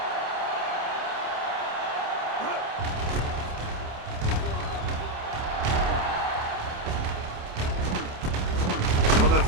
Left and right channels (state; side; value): late; left; 28 ms